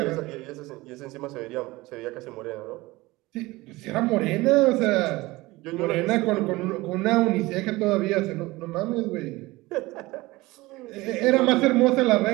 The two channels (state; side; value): quieter; left; 20.5 dB